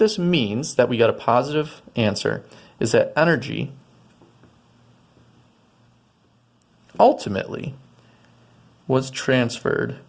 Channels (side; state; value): both; identical; correlation 1.00